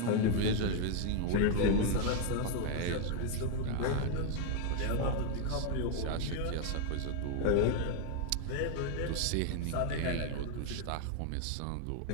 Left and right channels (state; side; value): different; both; correlation 0.01